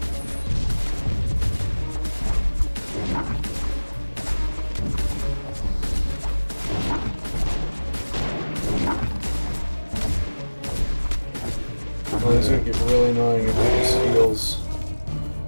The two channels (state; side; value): inverted; both; correlation -1.00